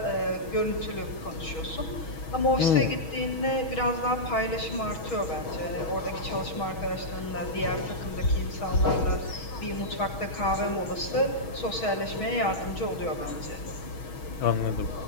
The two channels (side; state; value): right; late; 6.3 ms